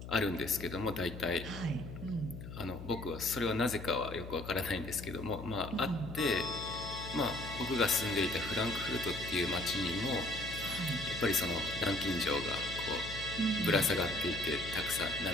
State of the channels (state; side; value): noise; left; hum, 10 dB below the sound